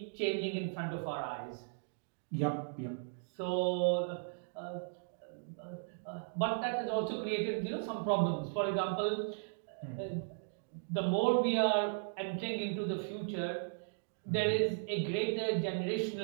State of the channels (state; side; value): silent; left; digital silence